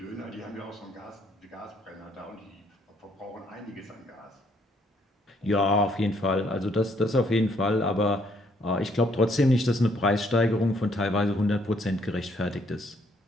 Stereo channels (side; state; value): both; normal; correlation 0.68